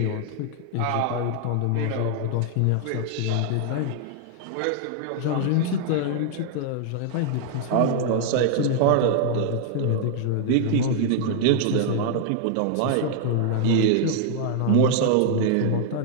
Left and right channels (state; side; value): different; both; correlation -0.01